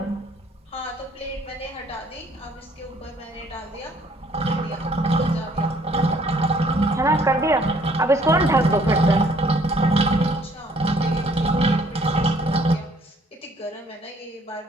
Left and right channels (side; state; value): both; normal; correlation 0.61